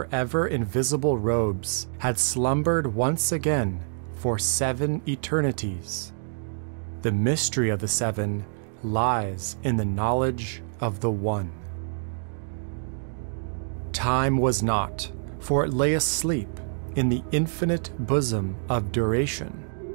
ever-invisible robes, had slumbered once again for 7 eternities. The mystery of the 7 lies in the knowledge of the One. Time was not, for it lay asleep in the infinite bosom of duration.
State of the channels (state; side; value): silent; left; digital silence